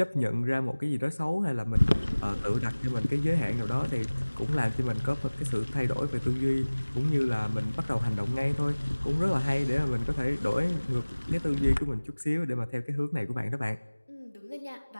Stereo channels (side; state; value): both; inverted; correlation -1.00